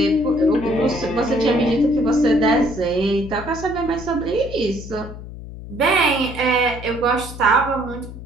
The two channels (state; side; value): noise; left; hum, 12 dB below the sound